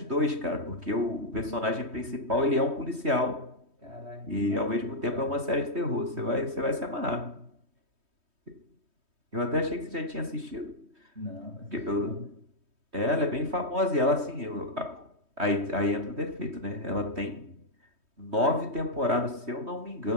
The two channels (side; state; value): left; late; 3.2 ms